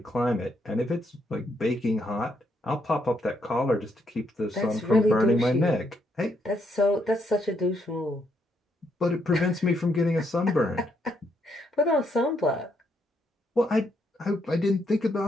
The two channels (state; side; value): normal; both; correlation 0.76